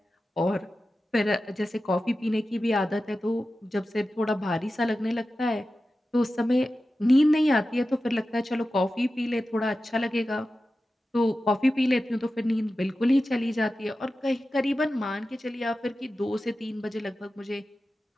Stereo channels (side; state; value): both; normal; correlation 0.93